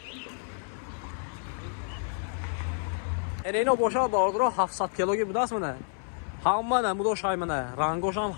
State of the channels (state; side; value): silent; right; 58 dB below the other